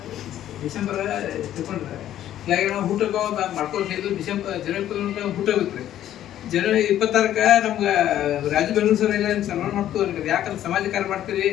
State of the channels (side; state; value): right; quieter; 11.9 dB